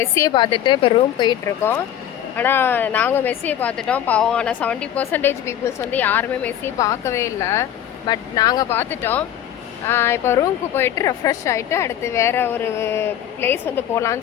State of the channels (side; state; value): right; quieter; 10.8 dB